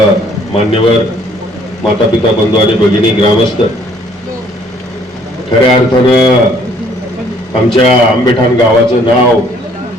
मान्यवर, माता पिता, बंधू आणि भगिनी, ग्रामस्थ, खऱ्या अर्थानं आमच्या आंबेठाण गावाचं नाव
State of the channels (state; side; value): normal; both; correlation 0.61